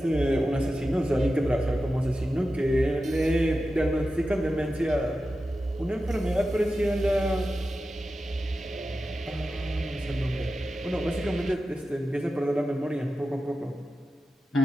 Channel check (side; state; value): both; normal; correlation 0.92